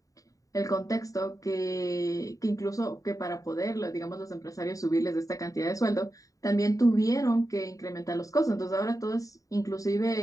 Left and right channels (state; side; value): late; right; 0.16 ms